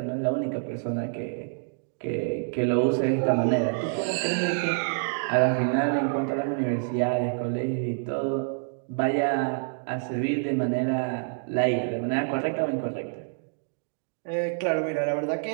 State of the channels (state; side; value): silent; left; digital silence